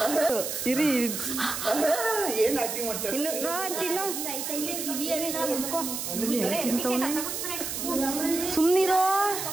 ಏನ್ ಆಕ್ಟಿಂಗ್ ಮಾಡ್ತಾರೆ? ಇನ್ನು ರೋಹನ್ ತಿನ್ನು. ಸುಮ್ನಿರೋ.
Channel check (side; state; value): right; noise; hiss, 4 dB below the sound